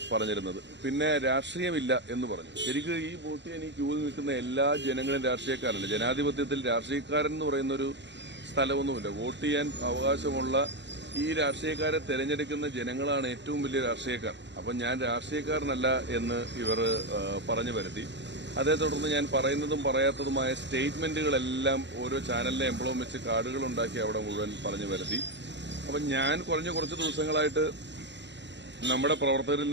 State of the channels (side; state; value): left; late; 0.52 ms